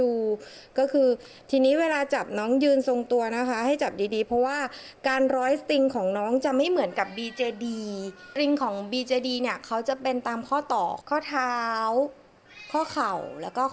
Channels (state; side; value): identical; both; correlation 1.00